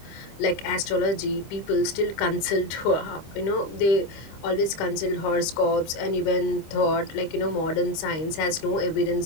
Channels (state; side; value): late; right; 25 ms